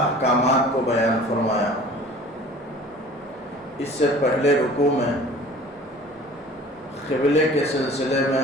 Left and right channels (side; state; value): both; normal; correlation 0.46